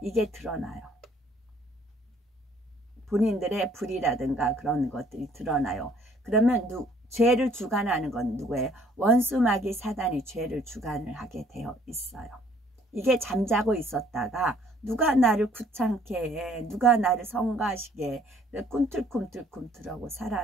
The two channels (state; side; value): normal; both; correlation 0.60